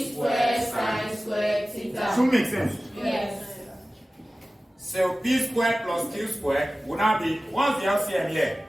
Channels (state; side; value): normal; both; correlation 0.96